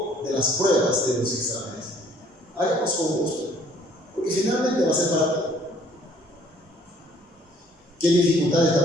de las pruebas, de los exámenes, hagamos con gusto, porque finalmente va a ser para ti. ¿Qué dificultades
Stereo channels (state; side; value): normal; both; correlation 0.60